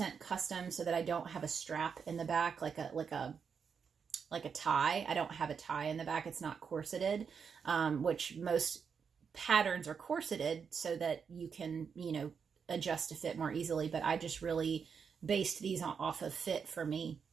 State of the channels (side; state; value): left; quieter; 6.4 dB